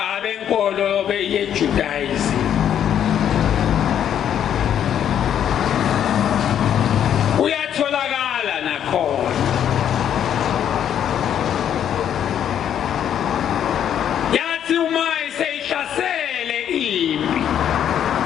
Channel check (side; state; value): right; quieter; 9.6 dB